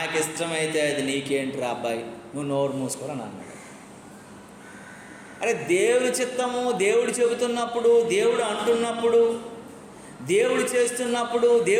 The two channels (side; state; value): both; identical; correlation 1.00